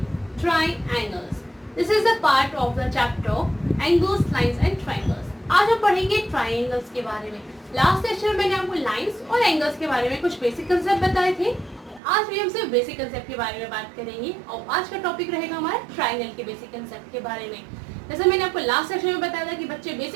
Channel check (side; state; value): left; drops out; at 12.0 s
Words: triangles. This is a part of the chapter angles, lines and triangles. आज हम पढ़ेंगे triangles के बारे में. Last session में मैंने आपको lines और एंगल्स के बारे में कुछ बेसिक कंसेप्ट बताए थे. आज भी हम सिर्फ बेसिक कंसेप्ट के बारे में बात करेंगे और आज का टॉपिक रहेगा हमारा ट्राइंगल के बेसिक कंसेप्ट के बारे में. जैसे मैंने आपको लास्ट सेशन में बताया था कि बच्चे